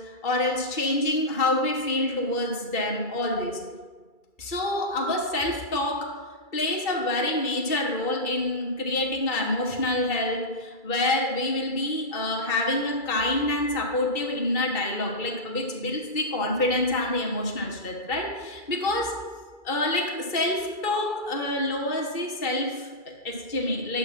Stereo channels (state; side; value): late; right; 2.3 ms